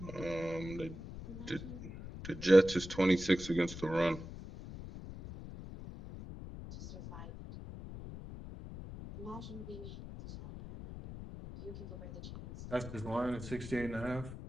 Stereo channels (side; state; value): left; noise; rumble, 11 dB below the sound